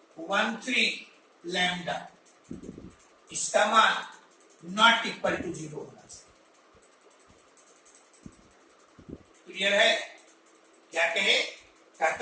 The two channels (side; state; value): both; identical; correlation 1.00